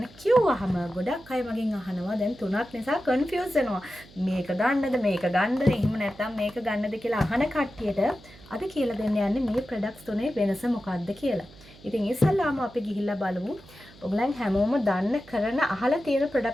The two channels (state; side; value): noise; right; hum, 23 dB below the sound